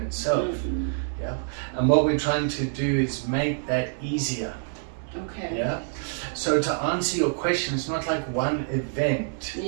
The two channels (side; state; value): left; silent; 61 dB below the other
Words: itself. Mm-hmm. Yeah, and what we're trying to do is make that easier. Okay. Yeah. So to answer your question, it's not like one event.